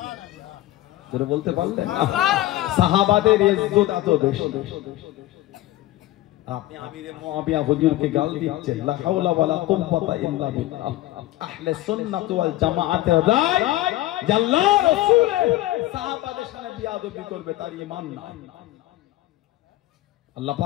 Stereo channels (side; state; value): right; quieter; 16.3 dB